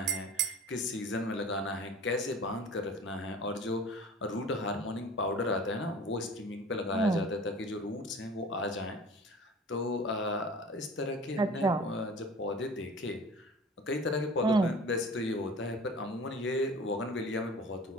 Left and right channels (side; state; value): both; normal; correlation 0.42